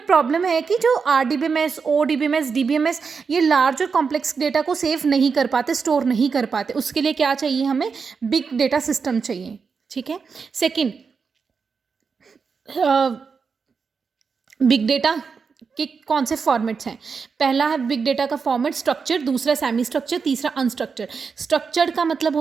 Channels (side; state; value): left; quieter; 5.5 dB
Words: प्रॉब्लम है कि जो RDBMS ODBMS DBMS ये लार्ज और कॉम्प्लेक्स डेटा को सेव नहीं कर पाते, स्टोर नहीं कर पाते। उसके लिए क्या चाहिए? हमें बिग डेटा सिस्टम चाहिए। ठीक है। सेकेंड, बिग डेटा के कौन से फॉर्मेट्स हैं? पहला है बिग डेटा का फॉर्मेट स्ट्रक्चर, दूसरा सेमी स्ट्रक्चर, तीसरा अनस्ट्रक्चर। स्ट्रक्चर्ड का मतलब